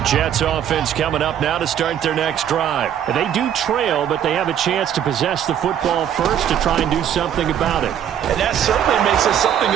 Jets offense coming up now to start their next drive. They do trail, but they have a chance to possess the football first to try and do something about it. And that certainly makes it something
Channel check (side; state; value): left; quieter; 9.7 dB